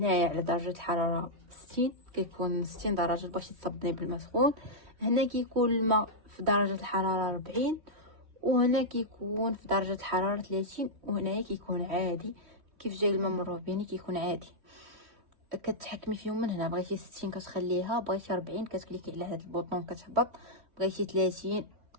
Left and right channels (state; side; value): late; left; 3.2 ms